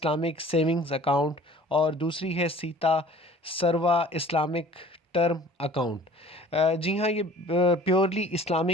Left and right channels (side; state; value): both; normal; correlation 0.48